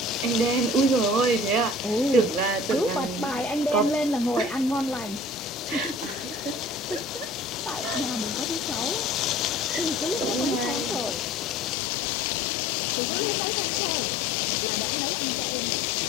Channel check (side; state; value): right; drops out; at 11.8 s